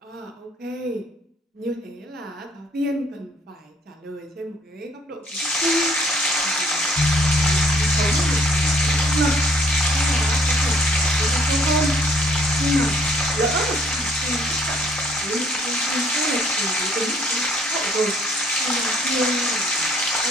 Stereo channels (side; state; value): both; normal; correlation 0.62